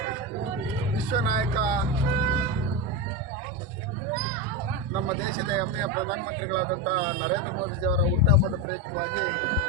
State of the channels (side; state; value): both; normal; correlation 0.15